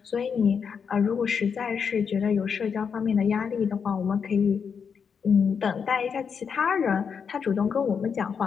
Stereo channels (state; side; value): quieter; right; 6.5 dB